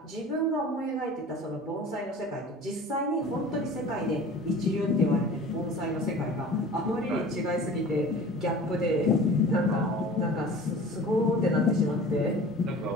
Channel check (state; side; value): normal; both; correlation 0.41